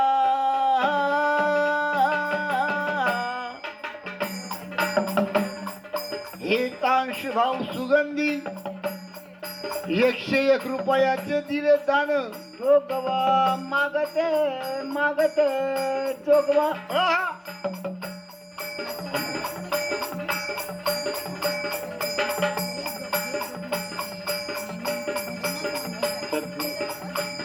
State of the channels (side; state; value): both; identical; correlation 1.00